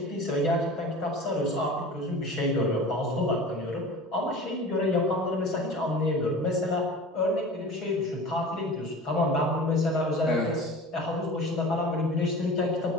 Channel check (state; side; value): normal; both; correlation 0.37